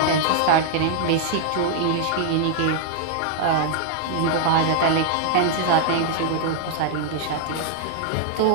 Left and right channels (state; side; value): different; both; correlation 0.00